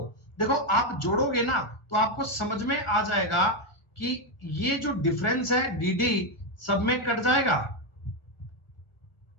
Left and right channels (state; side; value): late; right; 1.5 ms